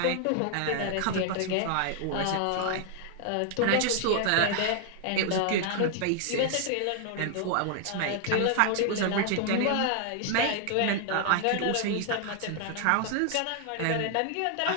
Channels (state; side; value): different; both; correlation 0.00